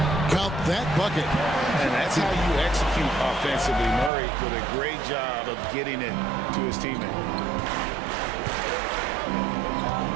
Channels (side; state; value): left; drops out; at 4.1 s